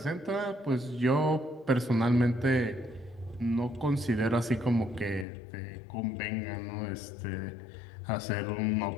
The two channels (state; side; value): drops out; right; at 5.2 s